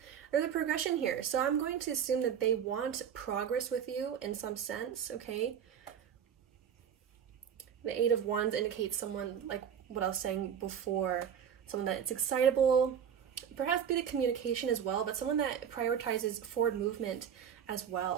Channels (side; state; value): left; quieter; 8.3 dB